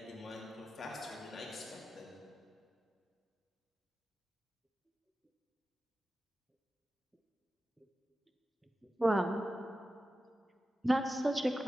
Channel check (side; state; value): both; normal; correlation 0.92